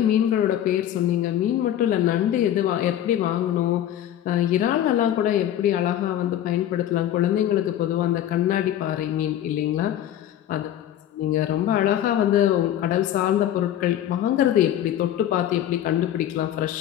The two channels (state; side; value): quieter; right; 11.4 dB